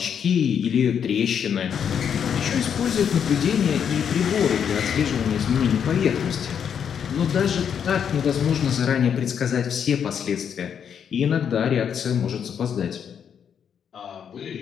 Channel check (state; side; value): quieter; right; 7.9 dB